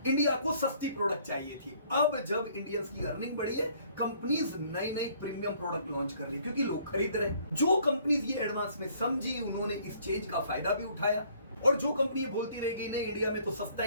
इंडिया को सस्ती प्रोडक्ट चाहिए थी। अब जब इंडियंस की अर्निंग बढ़ी है, कंपनीज नई नई प्रीमियम प्रोडक्ट लॉन्च कर रही, क्योंकि लोग खरीद रहे। जो कंपनीज ये एडवांस में समझी, उन्होंने इस चेंज का फायदा भी उठाया। और जो कंपनी बोलती रहेगी नहीं इंडिया में तो सस्ता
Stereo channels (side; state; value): both; inverted; correlation -0.61